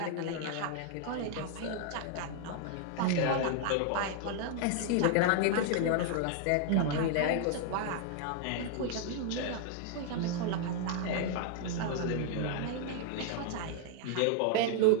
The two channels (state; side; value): different; both; correlation 0.00